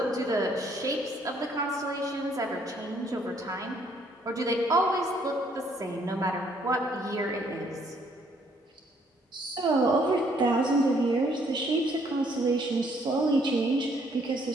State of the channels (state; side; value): normal; both; correlation 0.66